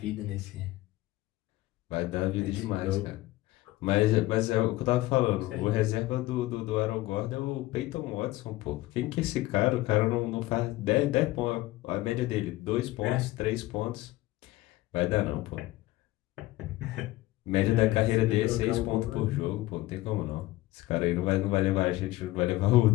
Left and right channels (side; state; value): right; quieter; 17.8 dB